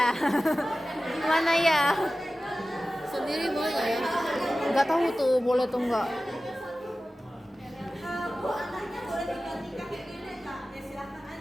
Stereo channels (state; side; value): normal; both; correlation 0.96